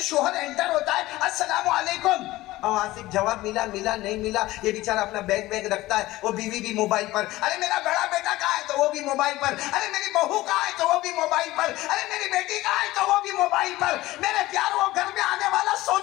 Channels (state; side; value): quieter; right; 17.6 dB